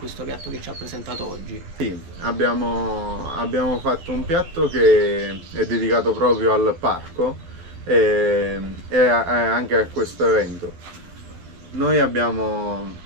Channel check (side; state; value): left; late; 12 ms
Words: piatto che ci ha presentato oggi. Sì, abbiamo fatto un piatto che è dedicato proprio al parco e anche a questo evento. Noi abbiamo